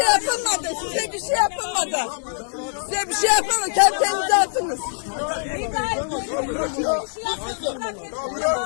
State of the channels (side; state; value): right; silent; digital silence